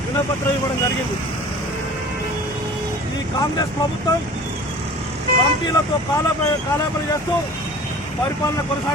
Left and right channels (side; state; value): both; normal; correlation 0.43